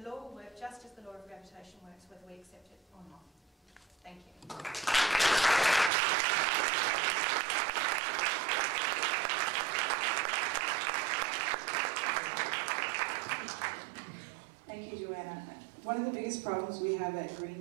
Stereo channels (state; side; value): drops out; left; at 5.9 s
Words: law will work just as the law of gravitation works, whether we accept it or not. Thank you. Thank you, Joanna. One of the biggest problems we have at Green